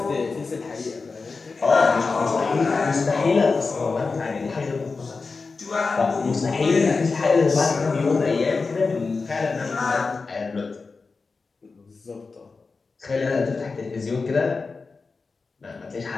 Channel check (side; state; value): right; quieter; 4.3 dB